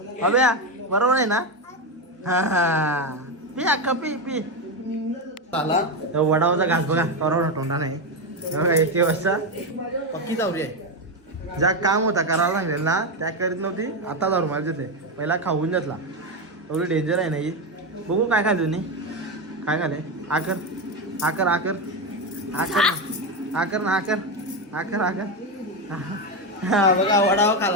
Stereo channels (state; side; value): normal; both; correlation 0.11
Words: अबे बरोबर आहे ना. हा पी अख्खा पी. आला वडावाचा घास बघा करोना तोंडा नाही. बघा 1 वाजता पक्की जाऊरी आहे. ज्या काम होता करायला सांगेल ना त्या करीत नव्हती. आता दारू मार घेतले, पहिला खाऊन घेतला. एवढी डेंजर आहे ना ही. बघू काय खाल्ली तुम्ही, काय खाले. आकर बघा वडापाव